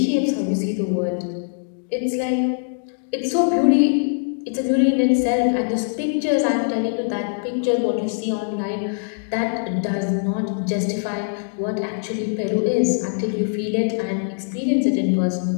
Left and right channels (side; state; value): right; silent; digital silence